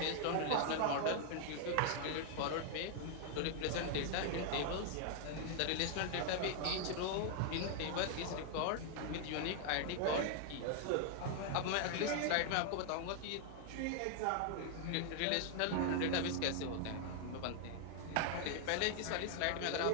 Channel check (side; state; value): both; different; correlation 0.00